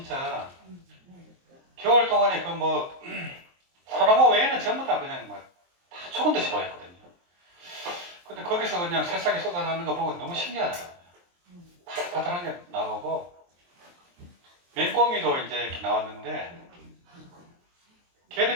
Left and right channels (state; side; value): late; left; 23 ms